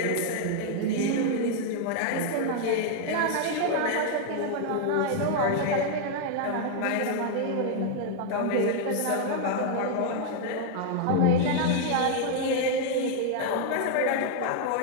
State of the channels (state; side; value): different; both; correlation 0.00